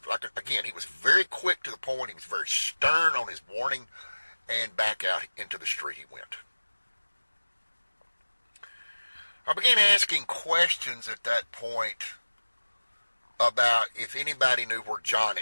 again, he was very quick to the point. He was very stern on his warning, and back out into the street he went. I began asking questions at that point about if anybody knew where John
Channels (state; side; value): inverted; both; correlation -1.00